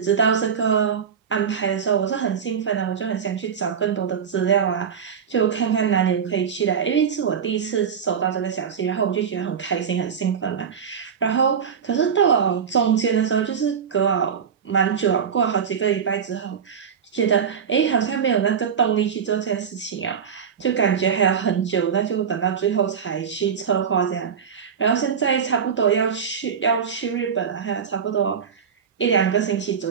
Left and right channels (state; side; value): quieter; left; 7.2 dB